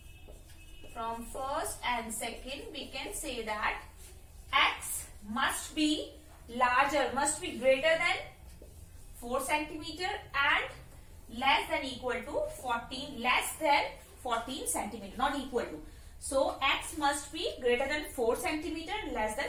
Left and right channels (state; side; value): identical; both; correlation 1.00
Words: from 1st and 2nd, we can say that x must be larger, must be greater than 4 centimeter and less than equal to 14, less than 14 centimeter, not equal to. So, x must be greater than 4 centimeter, less than